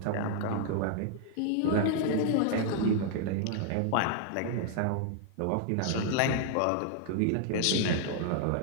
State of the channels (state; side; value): different; both; correlation -0.01